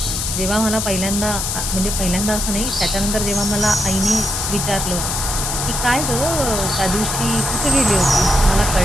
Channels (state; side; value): noise; left; hiss, 2 dB below the sound